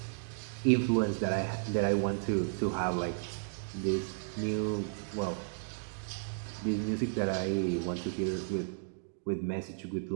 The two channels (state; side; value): silent; left; digital silence